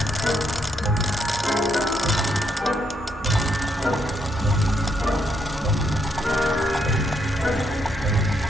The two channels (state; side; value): normal; both; correlation 0.76